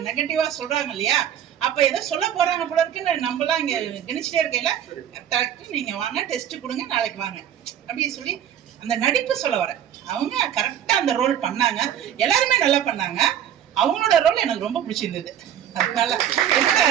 நெகட்டிவா சொல்றாங்க இல்லையா? அப்ப ஏதோ சொல்ல போறாங்க போல இருக்குன்னு நம்மளாம் இங்க கணிச்சுட்டே இருக்கையில நீங்க வாங்க டெஸ்ட் கொடுங்க நாளைக்கு வாங்க அப்படின்னு சொல்லி அந்த நடிப்பு சொல்ல வரேன். அவங்க கரெக்டா அந்த ரோல் பண்ணாங்க. எல்லாருமே நல்லா பண்ணாங்க. அவங்களோட ரோல் எனக்கு ரொம்ப பிடிச்சிருந்தது. அதனால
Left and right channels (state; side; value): quieter; left; 10.0 dB